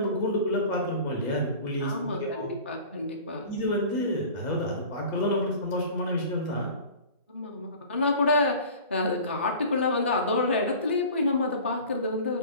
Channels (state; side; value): inverted; both; correlation -0.40